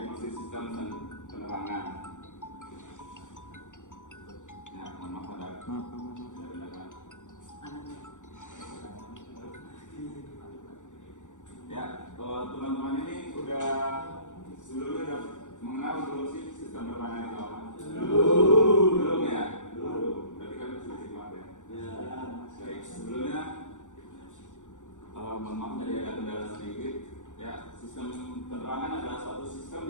sistem dan penerangan. Ya, mohon maaf ada kendala. Ya, teman-teman ini udah sebelumnya udah mengenal belum sih sistem penerangan itu apa? Belum ya? Belum. Berarti kan sudah simak ya? Baik, sebelumnya mohon maaf tadi ada kendala sedikit. Ya, sistem penerangan adalah suatu sistem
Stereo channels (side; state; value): right; late; 0.86 ms